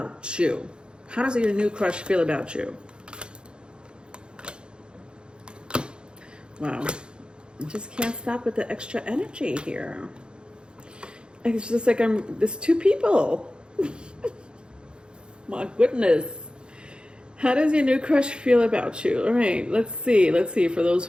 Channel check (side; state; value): left; late; 0.051 ms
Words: you? How does your new crush feel about you? Wow. I just can't stop with the extra energy here. It's just like there's two people. My goodness. How does your new crush feel about you? All right, let's see. For those